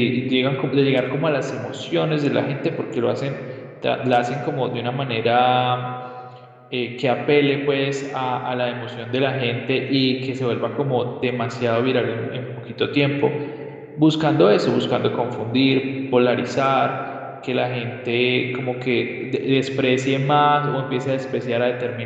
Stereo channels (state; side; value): identical; both; correlation 1.00